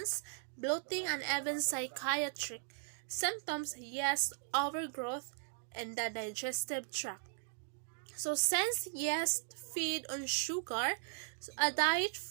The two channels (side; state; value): left; silent; digital silence